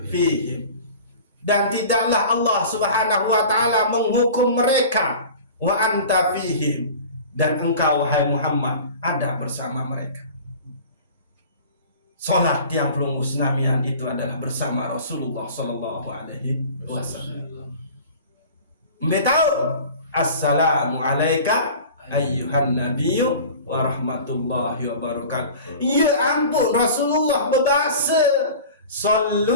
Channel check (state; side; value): inverted; both; correlation -0.40